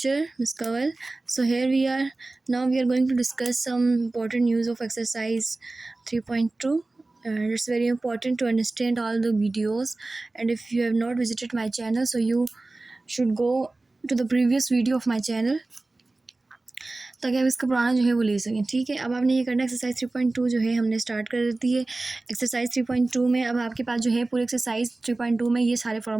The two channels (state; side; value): quieter; left; 3.1 dB